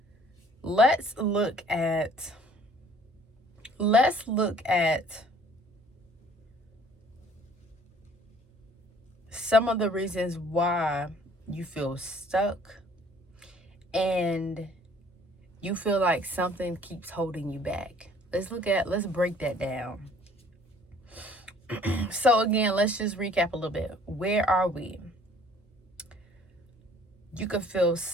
let's look at some of the reasons why you feel stuck and you feel like something keeps holding you back. Let's break that down. So again, let's just recap a little bit. Where are we? You could feel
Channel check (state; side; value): normal; both; correlation 0.56